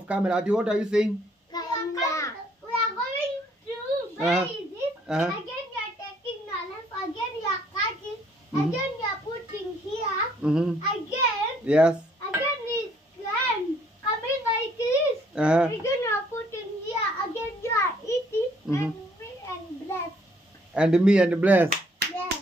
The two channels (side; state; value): both; normal; correlation 0.65